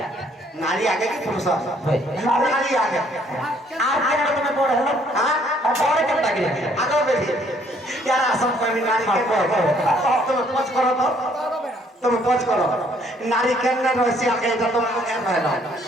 নারী আগে কি পুরুষ হয় নারী আগে আর কেন তুমি বড় হলো হ্যাঁ বড় কেন লাগে আগে বেশি यार सब कोई नारी के तुम पच करो तो तुम पच करो नारी के न रसी आगे तो तुम को क्या कहलो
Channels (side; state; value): both; normal; correlation 0.64